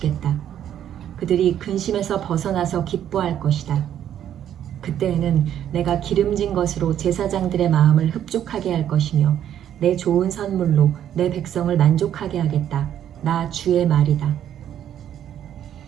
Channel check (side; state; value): left; quieter; 10.4 dB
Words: 그들이 근심에서 벗어나서 기뻐할 것이다. 그때에는 내가 기름진 것으로 제사장들의 마음을 흡족하게 할 것이며 내 좋은 선물로 내 백성을 만족하게 하겠다. 나 주의 말이다.